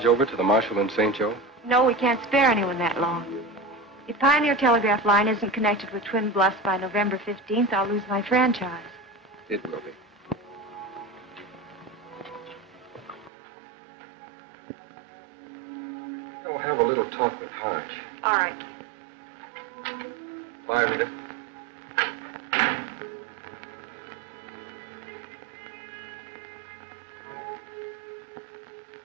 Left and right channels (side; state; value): left; drops out; at 13.3 s